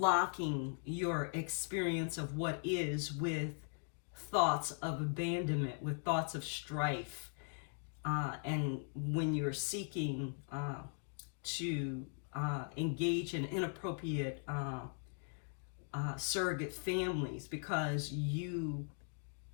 your experience of what is with thoughts of abandonment, with thoughts of strife, and when you're seeking to engage in inappropriate surrogate families because you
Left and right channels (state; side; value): silent; right; 51 dB below the other